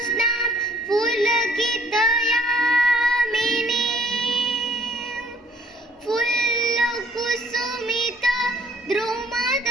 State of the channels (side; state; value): both; normal; correlation 0.58